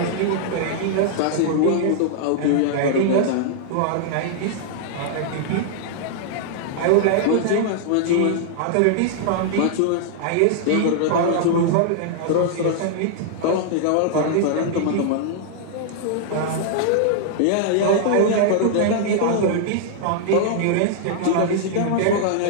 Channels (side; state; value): both; different; correlation -0.01